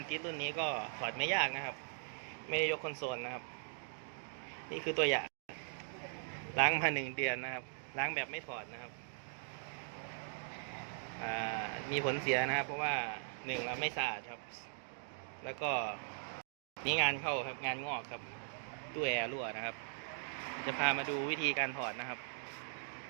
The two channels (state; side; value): silent; left; digital silence